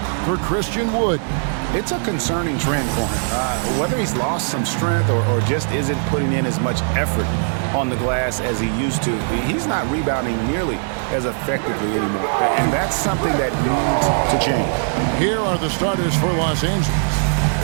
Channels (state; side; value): silent; left; 65 dB below the other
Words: for Christian Wood. It's a concerning trend for him. Whether he's lost some strength or just isn't putting in as much effort on the glass as he used to, he's not rebounding nearly as effectively anymore. And that's something that needs to change. Here are the starters for Los Angeles.